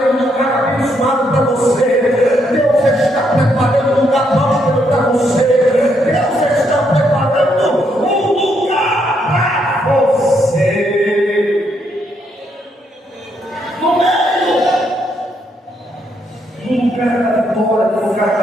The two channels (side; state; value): both; normal; correlation 0.75